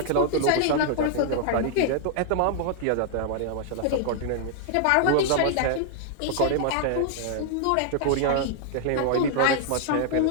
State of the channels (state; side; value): different; both; correlation 0.00